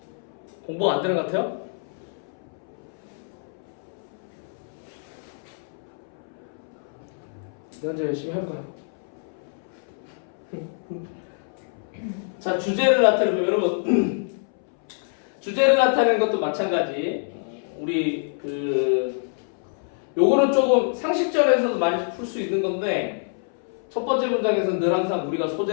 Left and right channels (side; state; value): right; silent; 61 dB below the other